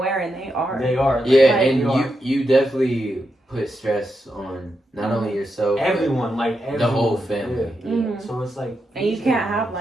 and they are. They are. Yeah, and you definitely put stress on not only yourself, everyone, the whole family. Yeah. So it's like, and you can't have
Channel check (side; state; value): both; normal; correlation 0.85